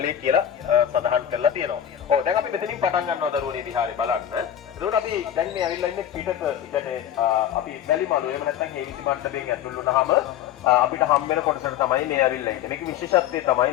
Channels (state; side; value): quieter; right; 10.4 dB